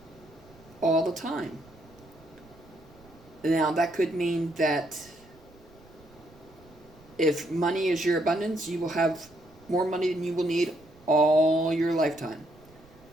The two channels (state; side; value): noise; right; rumble, 25 dB below the sound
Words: all the time. Now that could mean that if money is your abundance, you will have more money than you will need all your lifetime.